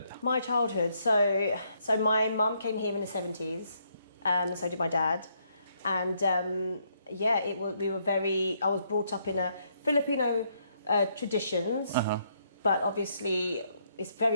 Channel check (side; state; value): both; inverted; correlation -0.73